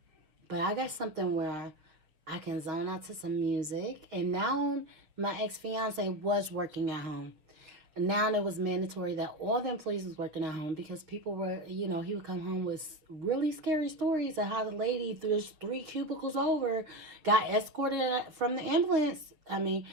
But I got something where I can zone out to some music. And now my ex-fiance was working at home. Now it was mandatory that all the employees was working at home because people were, he would come home with really scary stories of how the lady, there's 3 cubicles over, got escorted from the ambulance.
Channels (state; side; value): late; left; 6.4 ms